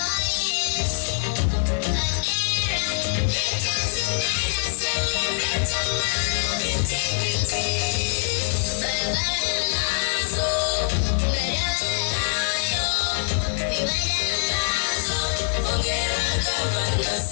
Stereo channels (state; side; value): silent; right; 62 dB below the other